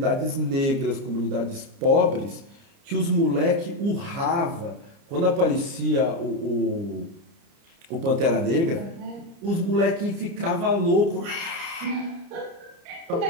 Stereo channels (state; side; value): late; left; 30 ms